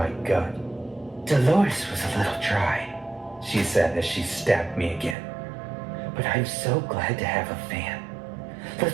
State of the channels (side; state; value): left; drops out; at 5.2 s